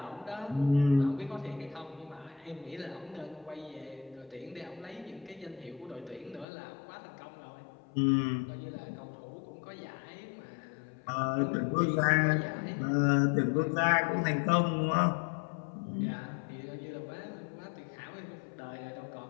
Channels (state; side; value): drops out; right; at 6.5 s